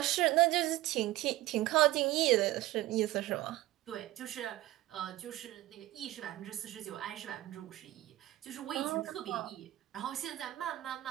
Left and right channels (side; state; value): left; quieter; 16.5 dB